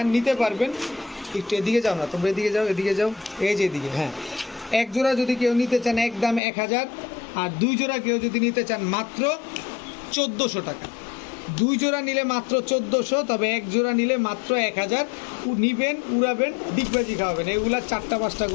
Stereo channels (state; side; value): drops out; right; at 6.4 s